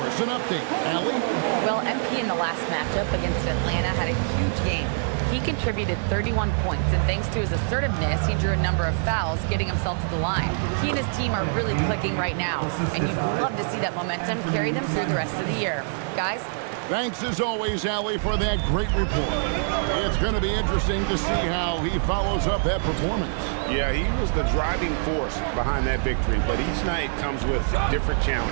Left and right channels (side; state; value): left; silent; digital silence